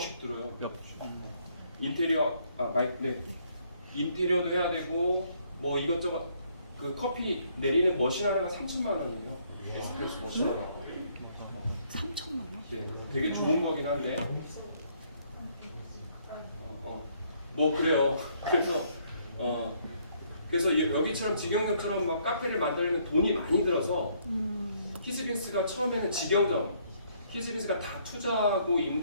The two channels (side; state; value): both; inverted; correlation -0.67